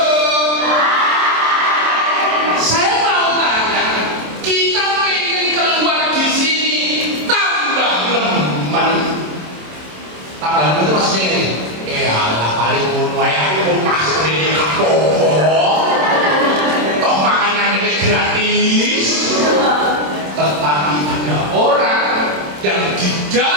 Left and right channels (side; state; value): left; late; 27 ms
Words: Saya mau tanya, kita pengen keluar di sini tambah nemen. Tambah nemen itu maksudnya ini. Alah paling ngono ae aku mau masuk ini apa-apa. Toh makanan ini gratis. Tetapi ada orang yang di